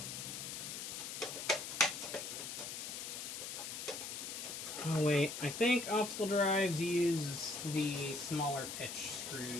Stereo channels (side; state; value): left; noise; hiss, 6 dB below the sound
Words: Oh wait, I think optical drives use the smaller pitch